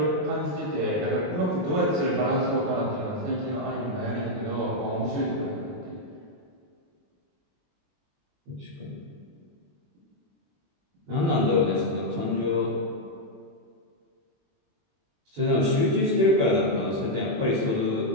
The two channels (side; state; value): left; late; 21 ms